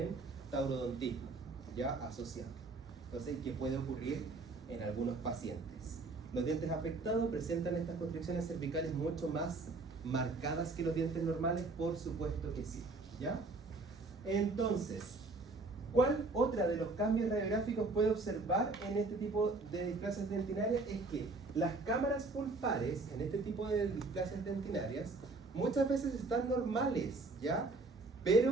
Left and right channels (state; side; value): quieter; left; 3.5 dB